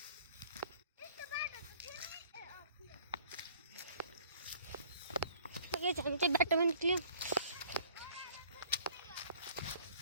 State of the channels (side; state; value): both; inverted; correlation -0.55